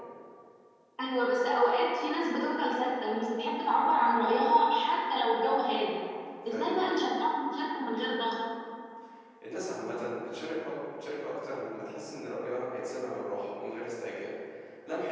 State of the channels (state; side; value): identical; both; correlation 1.00